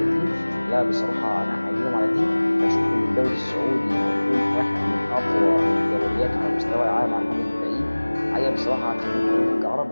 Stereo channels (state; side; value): inverted; both; correlation -1.00